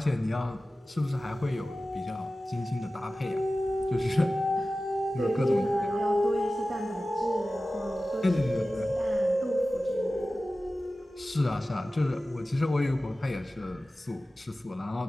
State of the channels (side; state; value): both; normal; correlation 0.96